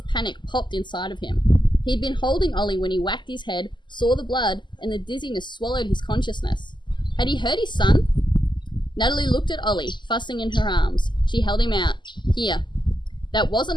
panic popped inside of him. He'd been holding Ollie when he whacked his head, saw the blood, and the dizziness swallowed his consciousness. Had he hurt his son? Natalie looked at Ollie, fussing in her arms. She held him out. Here. That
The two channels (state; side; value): late; right; 0.22 ms